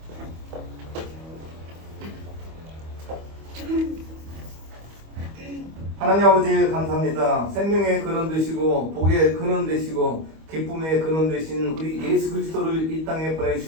하나님 아버지 감사합니다. 생명의 근원 되시고 복의 근원 되시고 기쁨의 근원 되신 우리 예수 그리스도를 이 땅에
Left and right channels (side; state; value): left; late; 25 ms